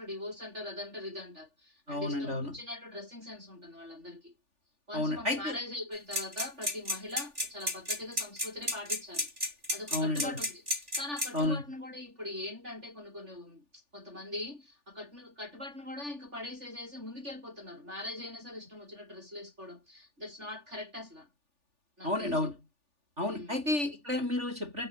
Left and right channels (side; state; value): left; late; 3.4 ms